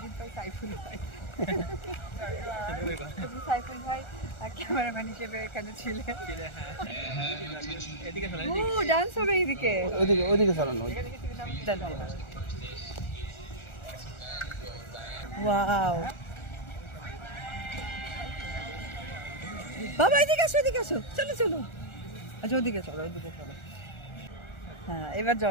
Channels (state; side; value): late; right; 1.4 ms